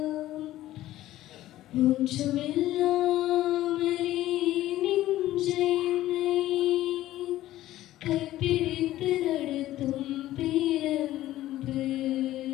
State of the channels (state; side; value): quieter; right; 14.7 dB